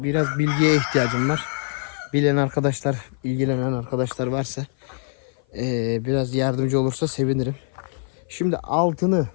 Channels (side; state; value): right; silent; 55 dB below the other